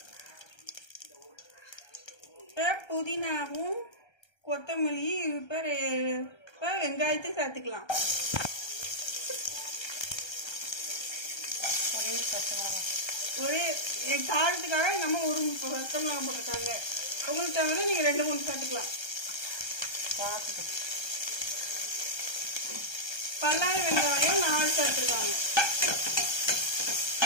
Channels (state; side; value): late; right; 1.3 ms